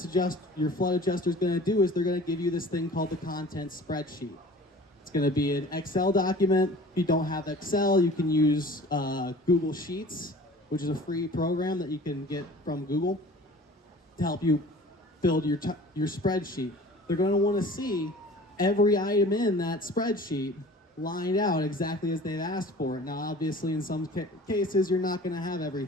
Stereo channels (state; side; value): normal; both; correlation 0.45